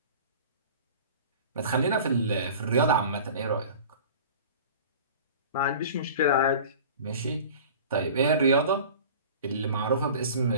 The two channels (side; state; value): both; inverted; correlation -0.41